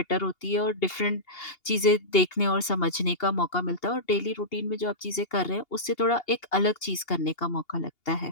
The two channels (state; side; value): late; right; 2.8 ms